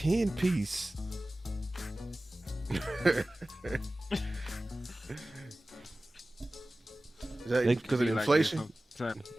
Is that because of inflation?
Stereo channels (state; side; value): normal; both; correlation 0.97